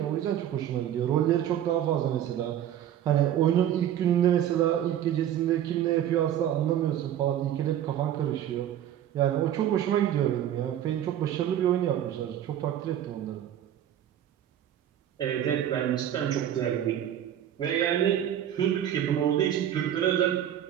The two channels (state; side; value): quieter; left; 10.9 dB